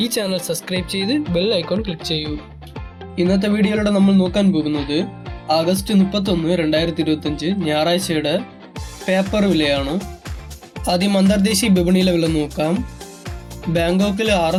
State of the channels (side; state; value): both; identical; correlation 1.00